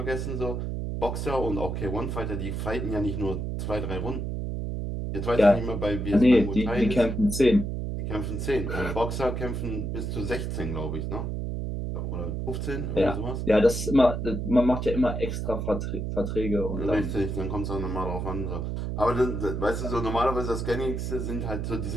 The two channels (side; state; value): right; noise; hum, 3 dB below the sound